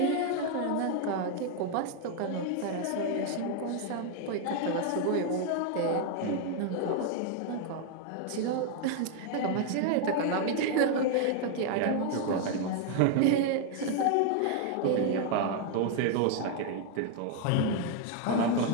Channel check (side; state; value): both; different; correlation 0.00